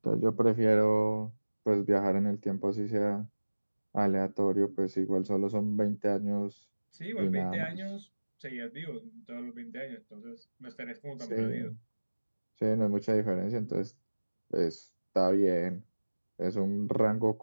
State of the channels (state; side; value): inverted; both; correlation -1.00